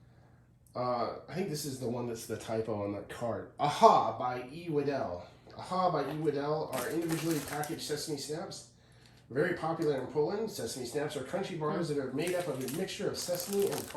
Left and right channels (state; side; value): identical; both; correlation 1.00